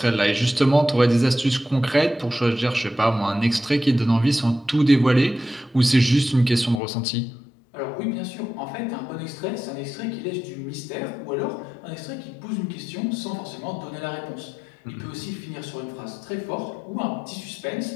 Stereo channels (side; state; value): right; drops out; at 6.8 s